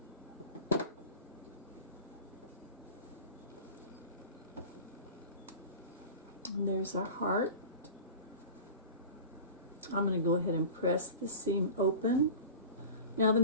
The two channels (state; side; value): inverted; both; correlation -0.36